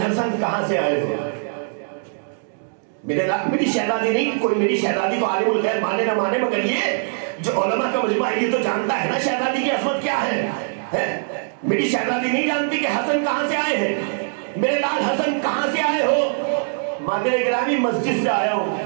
حسن کہاں سے آئے ہو؟ میری شہزادی نہیں، کوئی میری شہزادی تو عالم الغیب مانے نہ مانے، مگر یہ جو علماء کا مجمع ہے یہ تو جانتا ہے نا شہزادی کی عظمت کیا ہے. میری شہزادی نہیں جانتی کہ حسن کہاں سے آئے ہیں. میرے لال حسن کہاں سے آئے ہو؟ مادر گرامی مسجد سے آیا ہوں.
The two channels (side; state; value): left; silent; digital silence